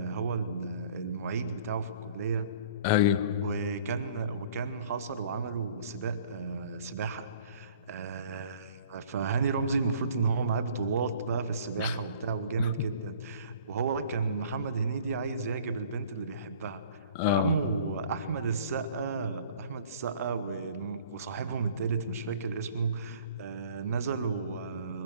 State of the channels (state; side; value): inverted; both; correlation -0.50